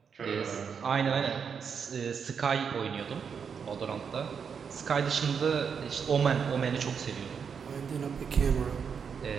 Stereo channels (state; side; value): quieter; left; 6.6 dB